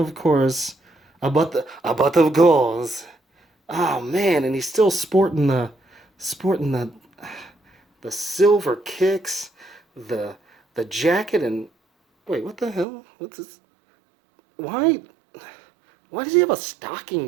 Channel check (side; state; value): left; drops out; at 12.9 s